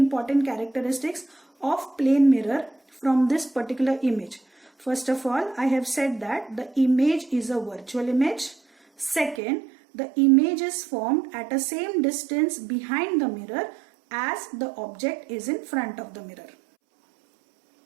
characteristics of plane mirror from this particular image. First of all, I have said that the image is a virtual image. Second, the image is formed at a same distance behind the mirror as the object is in front of the mirror.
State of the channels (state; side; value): drops out; left; at 9.4 s